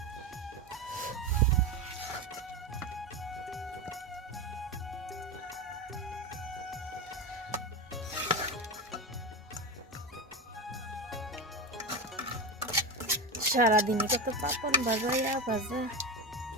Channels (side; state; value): both; normal; correlation 0.19